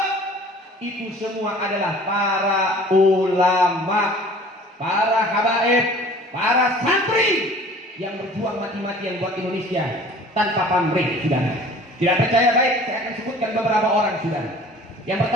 itu semua adalah para ulama, para habaib, para santri yang berjuang mati-matian buat Indonesia tanpa pamrih, saudara. Tidak percaya baik, saya akan sebutkan beberapa orang, saudara. Yang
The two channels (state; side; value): normal; both; correlation 0.47